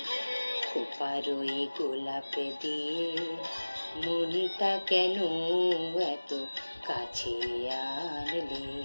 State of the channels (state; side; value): inverted; both; correlation -1.00